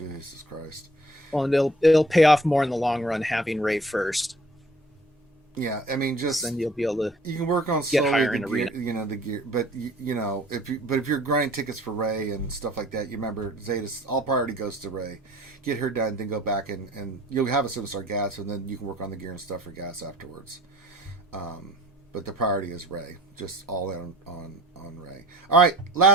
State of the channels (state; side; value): normal; both; correlation 0.52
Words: Christ. Well, and it'll pay off more in the long run having Ray first. Yeah, I mean, just then you'll be able to. You can work on get higher in arena. You know the gear, but you know if you're grinding tickets for Ray and stuff like that, you remember Zeta's all priority goes to Ray. Get her done, then go back and you'll have a 7-star gas, and then you can work on the gear and stuff for gas afterwards. But the priority is Ray. Just all in on Ray. All right,